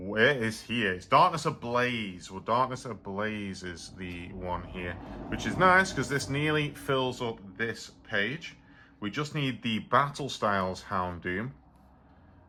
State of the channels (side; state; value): both; identical; correlation 1.00